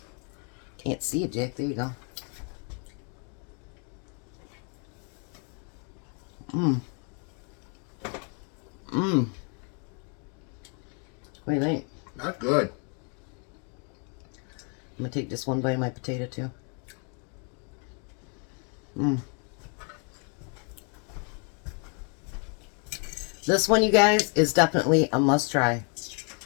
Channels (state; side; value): quieter; right; 38.7 dB